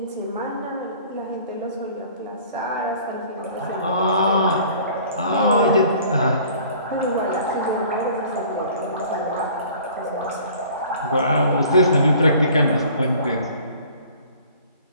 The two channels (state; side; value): inverted; both; correlation -0.50